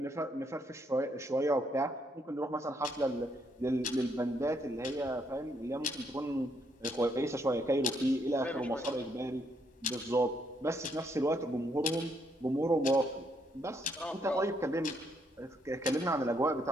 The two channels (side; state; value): both; normal; correlation 0.73